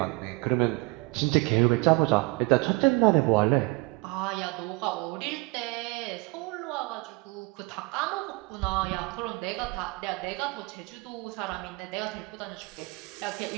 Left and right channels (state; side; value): quieter; left; 25.7 dB